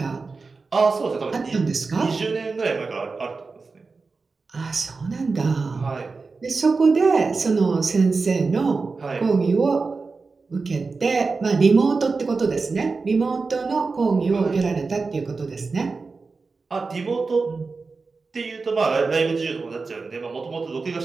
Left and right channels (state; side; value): quieter; left; 4.2 dB